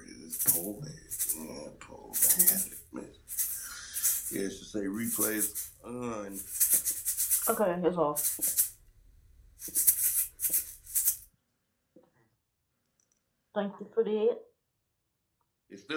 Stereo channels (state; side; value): identical; both; correlation 1.00